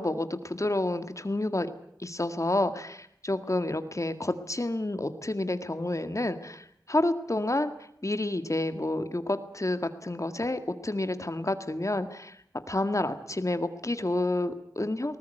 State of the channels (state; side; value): normal; both; correlation 0.86